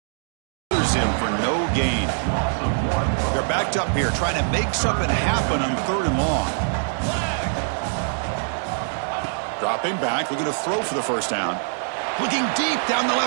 Him for no gain. They're backed up here trying to make something happen on 3rd and long. Dropping back, looking to throw for the 1st down. Looking deep down the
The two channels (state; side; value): silent; left; digital silence